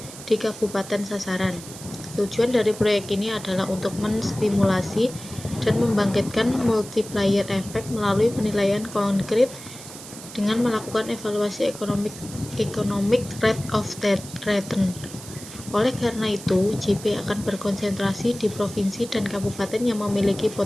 di kabupaten sasaran. Tujuan dari proyek ini adalah untuk menstimulasi dan membangkitkan multiplier effect melalui penilaian konkret dengan melakukan evaluasi economic rate of return. Oleh karena itu, GP akan berkonsentrasi di provinsi dan kabupaten yang memiliki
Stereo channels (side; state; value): right; noise; hiss, 14 dB below the sound